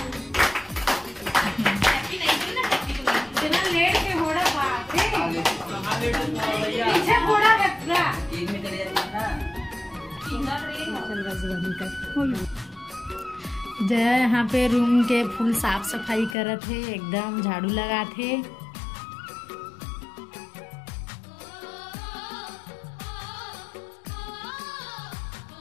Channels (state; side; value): drops out; right; at 16.4 s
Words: जया यहाँ पे रूम के फुल साफ सफाई करत है, एकदम झाड़ू लगा थे।